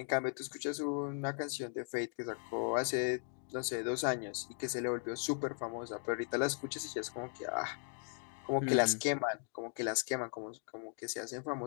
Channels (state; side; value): silent; right; 53 dB below the other